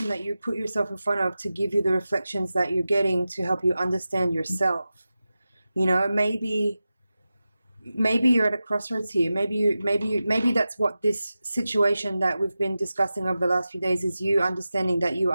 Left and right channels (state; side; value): inverted; both; correlation -0.94